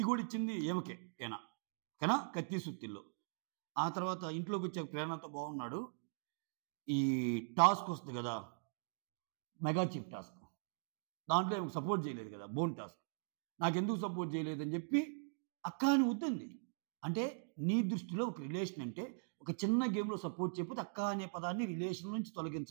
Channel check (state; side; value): silent; left; digital silence